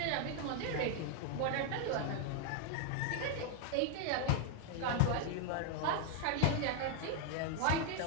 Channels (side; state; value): both; different; correlation 0.00